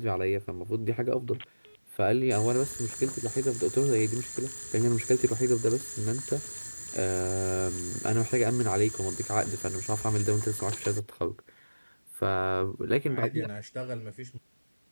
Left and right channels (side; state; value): both; inverted; correlation -1.00